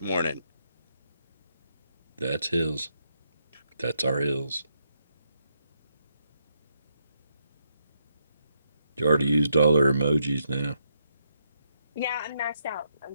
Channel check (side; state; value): both; inverted; correlation -0.79